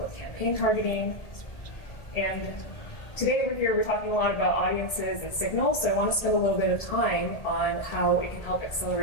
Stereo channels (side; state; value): right; late; 1.7 ms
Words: campaign targeting. And today we're talking a lot about audiences and signals, so I want to spend a little bit of time on how it can help